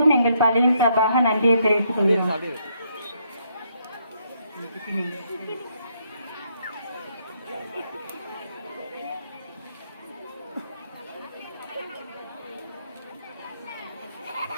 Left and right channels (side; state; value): both; inverted; correlation -0.73